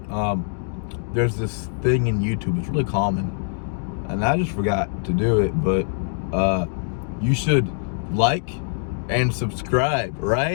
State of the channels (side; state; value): right; silent; digital silence